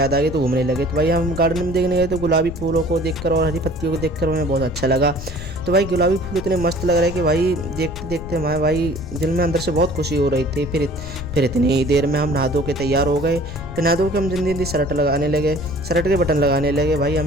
आ गई तो घूमने लगे। तो भाई हम गार्डन में देखने गए तो गुलाबी फूलों को देखकर और हरी पत्तियों को देखकर हमें बहुत अच्छा लगा। तो भाई गुलाबी फूल इतने मस्त लग रहे कि भाई देखते देखते हमारे भाई दिल में अंदर से बहुत खुशी हो रही थी। फिर इतनी देर में हम नहा धो के तैयार हो गए। फिर नहा धो के हम जल्दी जल्दी शर्ट लगाने लगे, शर्ट के बटन लगाने लगे। भाई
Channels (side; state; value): left; noise; rumble, 10 dB below the sound